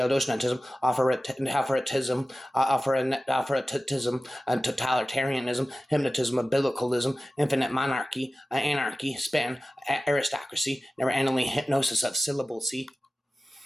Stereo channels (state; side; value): normal; both; correlation 0.96